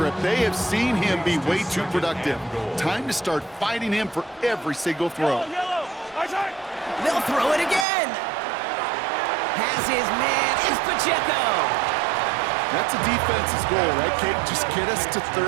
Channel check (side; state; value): left; drops out; at 7.9 s